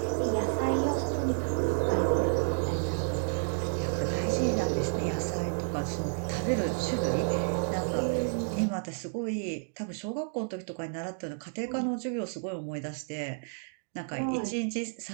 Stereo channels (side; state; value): left; silent; digital silence